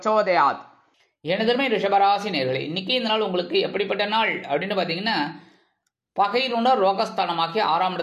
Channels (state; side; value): identical; both; correlation 1.00